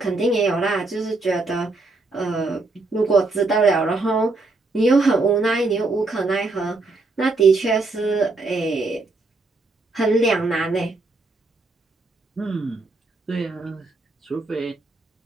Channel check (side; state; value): left; quieter; 3.4 dB